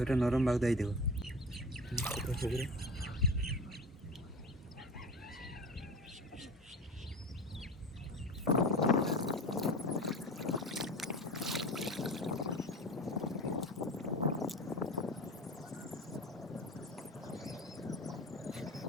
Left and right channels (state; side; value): normal; both; correlation 0.33